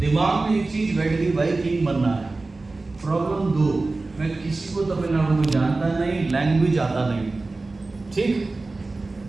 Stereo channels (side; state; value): left; quieter; 3.4 dB